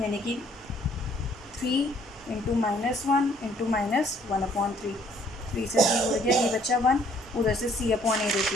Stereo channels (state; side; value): normal; both; correlation 0.62